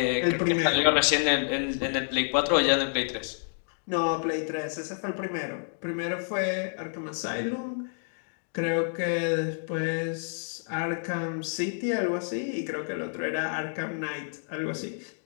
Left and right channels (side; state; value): right; silent; digital silence